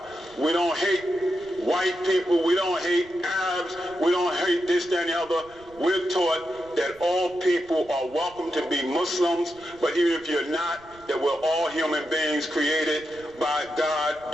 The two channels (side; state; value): right; noise; rumble, 25 dB below the sound